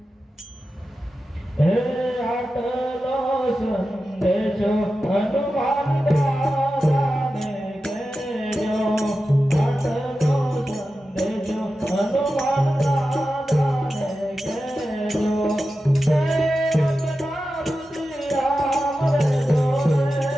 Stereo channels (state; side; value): normal; both; correlation 0.92